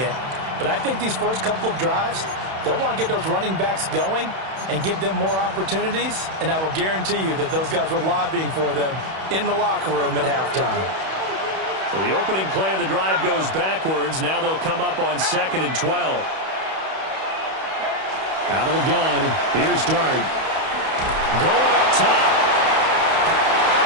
but I think these first couple of drives, they'll want to get those running backs going and give them more opportunities, and I will guarantee you that those guys were lobbying for them in the locker room at halftime. So the opening play of the drive goes backwards. Now they'll come up on 2nd and 12. Out of the gun. Here's Dart. Going up top.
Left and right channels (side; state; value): left; late; 31 ms